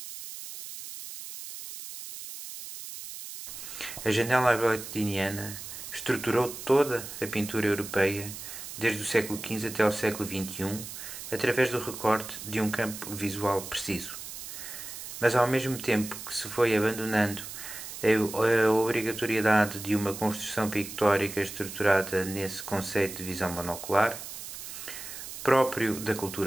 A janela agostiniana estruturou toda a pintura europeia, desde o século XV até ao século XXI, através do recorte de um campo visual preciso. Mas ao mesmo tempo que se foi abandonando a obrigatoriedade de uma construção pictórica estruturada nesse conceito de visão monocular, próprio da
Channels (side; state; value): right; noise; hiss, 10 dB below the sound